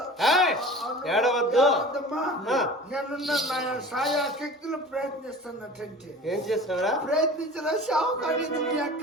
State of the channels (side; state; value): both; normal; correlation 0.39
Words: ఏడవద్దమ్మా నేనున్న నా సాయా శక్తులు ప్రయత్నిస్తున్నట్టు ఏం చేస్తావరా ప్రయత్నించరా షావు కానీ మీ